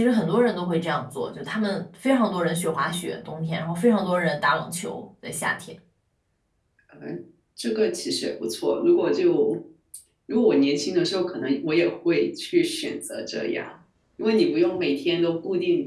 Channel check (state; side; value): identical; both; correlation 1.00